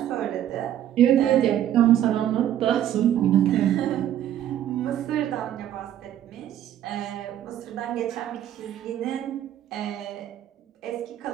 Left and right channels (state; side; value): quieter; left; 11.3 dB